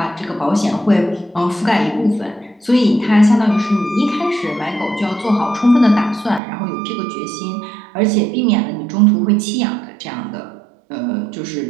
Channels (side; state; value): left; drops out; at 6.4 s